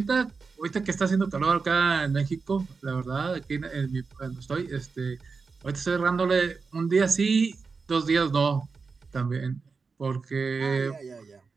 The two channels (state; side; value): quieter; left; 4.8 dB